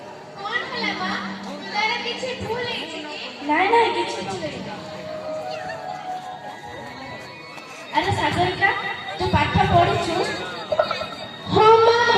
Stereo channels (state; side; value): identical; both; correlation 1.00